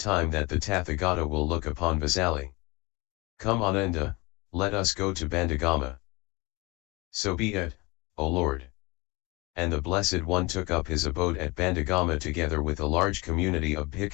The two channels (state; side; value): quieter; right; 25.1 dB